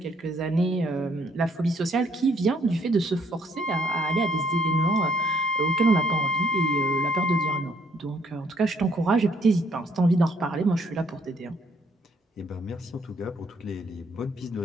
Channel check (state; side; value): normal; both; correlation 0.67